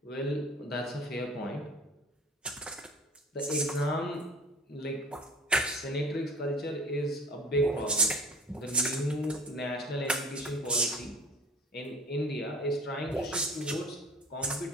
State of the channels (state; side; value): normal; both; correlation 0.45